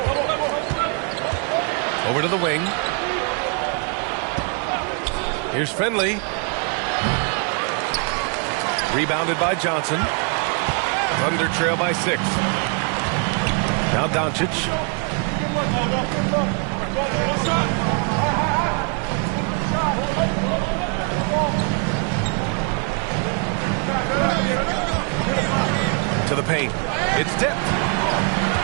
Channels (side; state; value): left; quieter; 37.8 dB